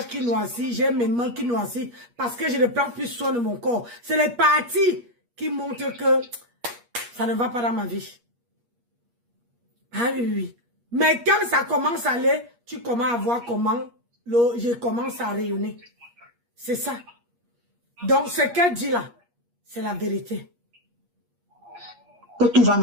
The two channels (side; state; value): left; late; 8.4 ms